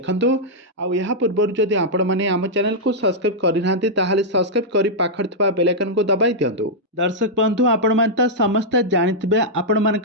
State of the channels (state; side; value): normal; both; correlation -0.06